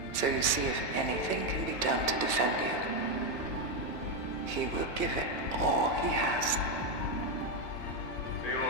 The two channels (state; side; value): late; right; 1.2 ms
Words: So you see, if anything can be done to defend you, he will give it all he has.